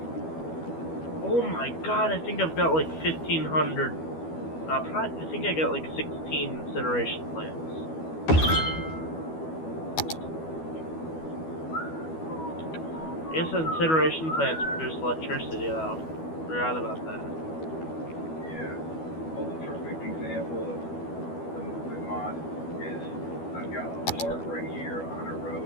Oh my god, I think I've got like 1,500. I think I got like 16 incineration plants. I guess incineration plants produce electricity though. Forgot about that. Yeah. Well, the perfect example of the movement mod is I've got a park right here on a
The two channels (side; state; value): right; late; 12 ms